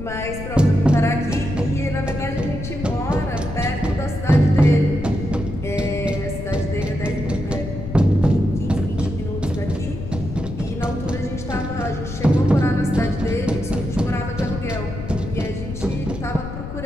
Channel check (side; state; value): left; noise; rumble, 8 dB below the sound